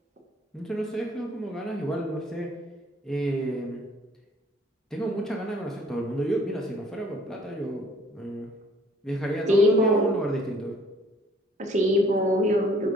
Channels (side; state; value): both; normal; correlation 0.58